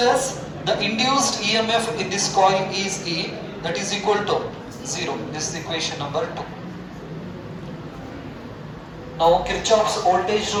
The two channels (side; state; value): both; identical; correlation 1.00